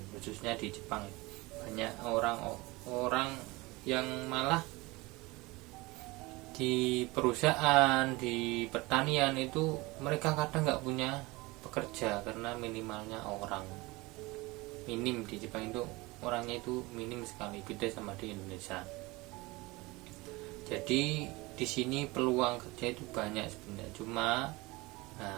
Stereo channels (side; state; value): left; quieter; 22.7 dB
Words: khususnya di Jepang. Banyak orang yang malah di perusahaan, di pertanian pertanian itu mereka kadang nggak punya pekerja karena minimalnya orang minim di Jepang itu, orangnya itu minim sekali, beda sama di Indonesia. Jadi di sini peluang kerja itu banyak sebenarnya, cuma